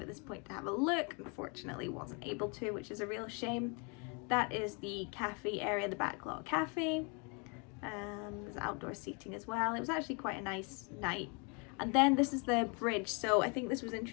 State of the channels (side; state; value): right; quieter; 33.9 dB